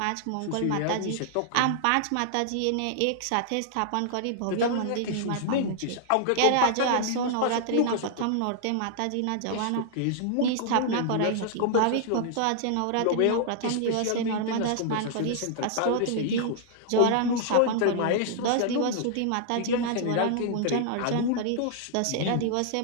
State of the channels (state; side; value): different; both; correlation -0.01